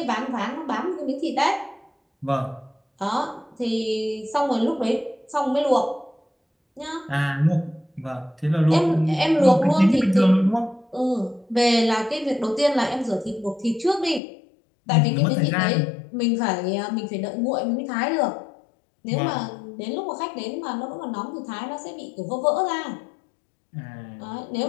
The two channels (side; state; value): right; drops out; at 14.2 s